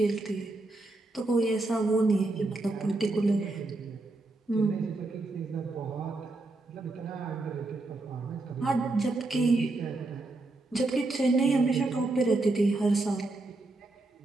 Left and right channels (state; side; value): quieter; left; 3.0 dB